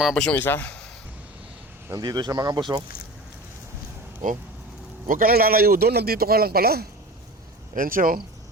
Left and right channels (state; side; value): normal; both; correlation 0.34